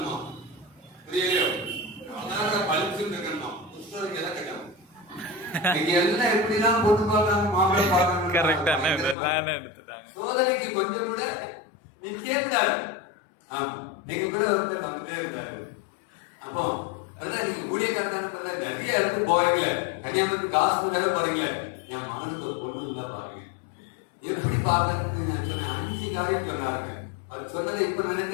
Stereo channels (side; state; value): right; drops out; at 9.2 s